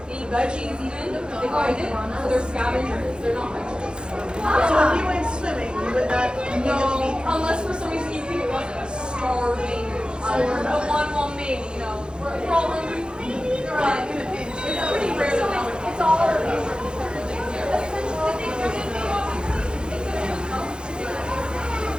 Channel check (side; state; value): left; late; 0.049 ms